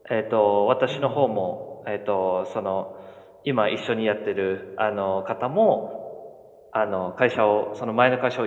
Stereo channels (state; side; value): identical; both; correlation 1.00